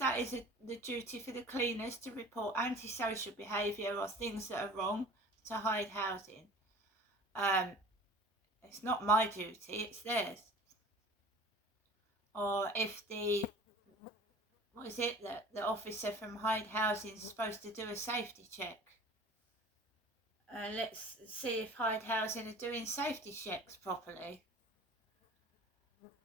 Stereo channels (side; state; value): both; normal; correlation 0.43